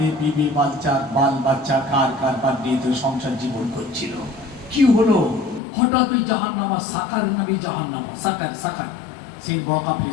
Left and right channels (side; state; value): right; drops out; at 5.6 s